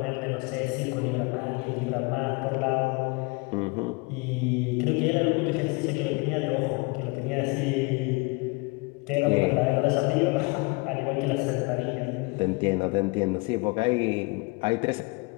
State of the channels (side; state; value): right; quieter; 27.9 dB